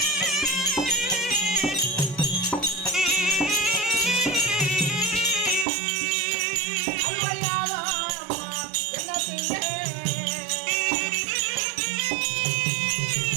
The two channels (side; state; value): left; drops out; at 5.7 s